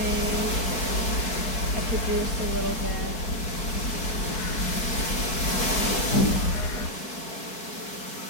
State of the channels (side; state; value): right; late; 4.6 ms